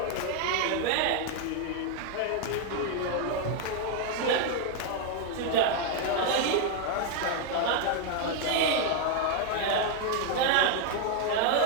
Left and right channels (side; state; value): both; different; correlation 0.00